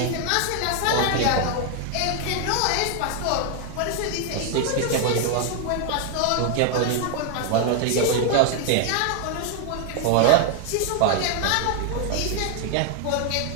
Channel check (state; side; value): different; both; correlation 0.00